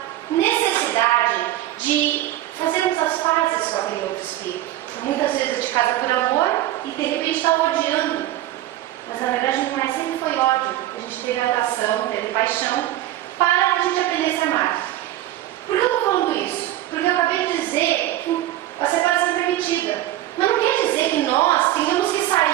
necessidade de fazermos as pazes com aquele outro espírito. Muitas vezes a gente casa por amor e de repente está odiando. Mas na verdade não é, sempre foi ódio. A gente teve atração, teve paixão, para que a gente aprendesse a amar. Por que eu estou falando isso? Porque eu acabei de dizer que a separação é permitida. Mas não quer dizer que nós tenhamos que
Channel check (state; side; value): quieter; left; 14.2 dB